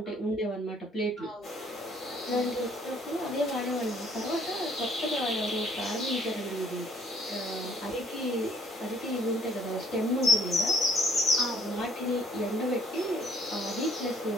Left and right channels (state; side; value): normal; both; correlation 0.61